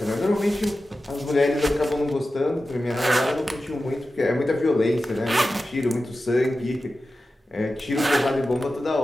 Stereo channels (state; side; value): normal; both; correlation 0.93